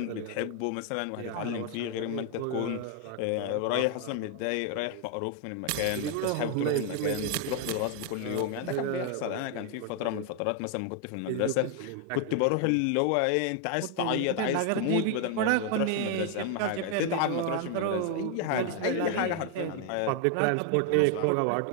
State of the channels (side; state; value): both; different; correlation 0.00